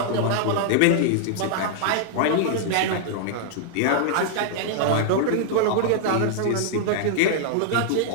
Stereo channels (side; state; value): both; different; correlation -0.01